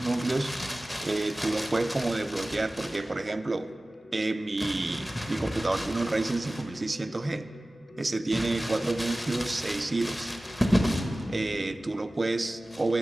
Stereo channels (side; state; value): both; normal; correlation 0.97